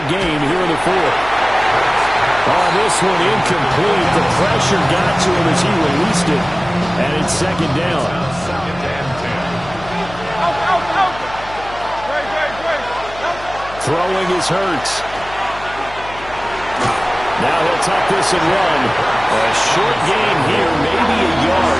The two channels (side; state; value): left; noise; hum, 17 dB below the sound